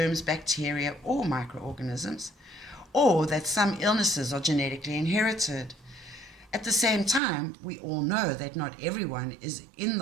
bacteria, or microorganisms, or that some illnesses are genetically inherited. At the same time, we all know that not everyone is in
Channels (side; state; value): left; drops out; at 7.2 s